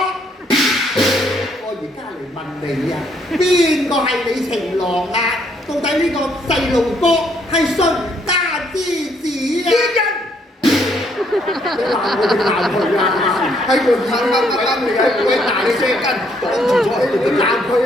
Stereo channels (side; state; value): both; normal; correlation 0.69